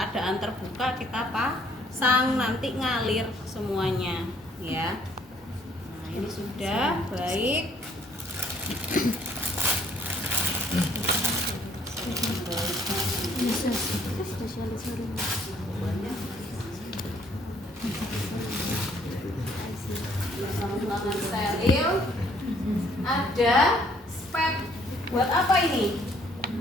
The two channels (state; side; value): normal; both; correlation 0.63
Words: terbuka kita pasang, nanti ngalir semuanya ya. Nah, ini sudah baik. Tangan steril. Ada spet. Buat apa ini?